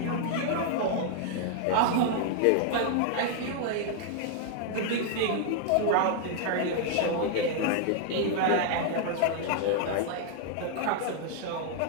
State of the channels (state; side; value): different; both; correlation 0.00